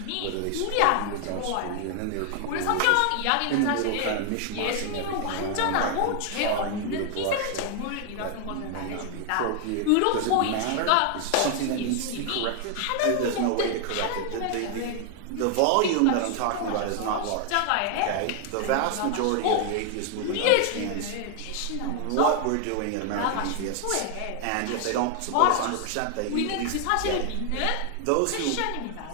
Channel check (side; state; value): both; different; correlation 0.00